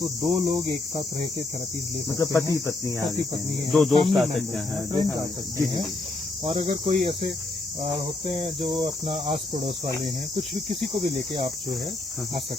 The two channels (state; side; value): quieter; right; 3.1 dB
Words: 2 लोग एक साथ रह के थेरेपीज ले सकते हैं। पति पत्नी है, 2 दोस्त आ सकते हैं, फ्रेंड्स आ सकते हैं। और अगर कोई ऐसे होते हैं जो अपना आस पड़ोस वाले हैं, कुछ भी, किसी को भी लेके आप जो है आ